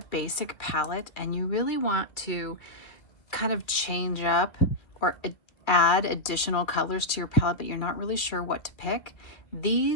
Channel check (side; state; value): right; late; 2.4 ms